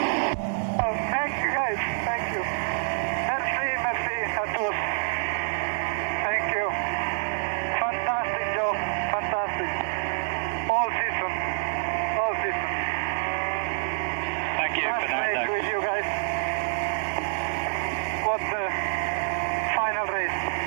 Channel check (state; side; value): silent; left; digital silence